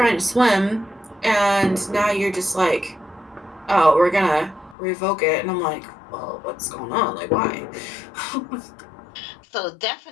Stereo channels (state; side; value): drops out; right; at 4.8 s